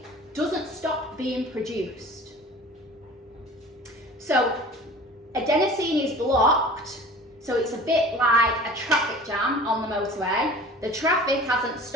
doesn't stop being produced. So adenosine is blocked, so it's a bit like a traffic jam on the motorway. The traffic hasn't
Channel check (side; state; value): both; normal; correlation 0.42